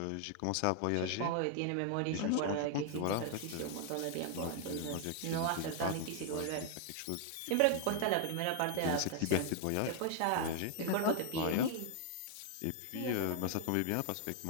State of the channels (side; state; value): both; different; correlation 0.00